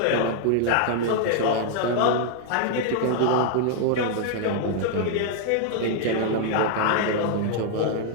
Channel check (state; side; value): different; both; correlation 0.00